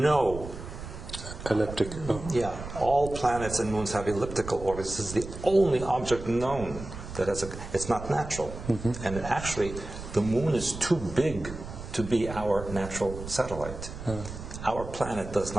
elliptic. Yeah, all planets and moons have elliptical orbits. This is the only object known that has it's not natural. Mm-hmm. And actually, the moon is too big to be our natural satellite. Our planet does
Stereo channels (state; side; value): noise; right; rumble, 10 dB below the sound